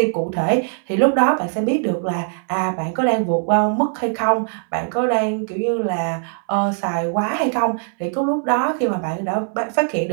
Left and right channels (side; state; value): left; silent; digital silence